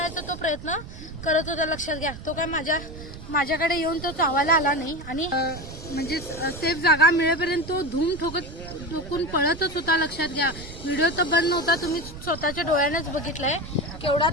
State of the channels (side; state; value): right; noise; rumble, 13 dB below the sound